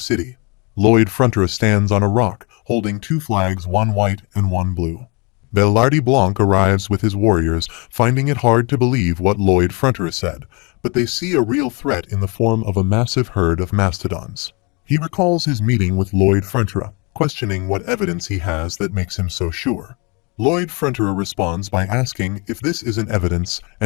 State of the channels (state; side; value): quieter; right; 30.1 dB